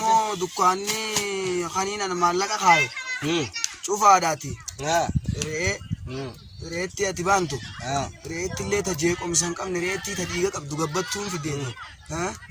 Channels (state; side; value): identical; both; correlation 1.00